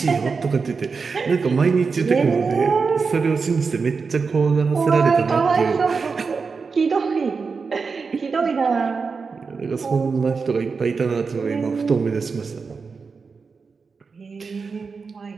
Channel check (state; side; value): quieter; left; 4.9 dB